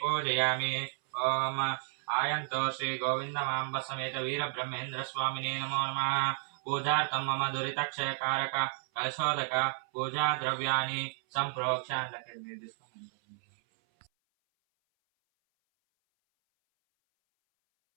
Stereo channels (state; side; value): silent; left; 56 dB below the other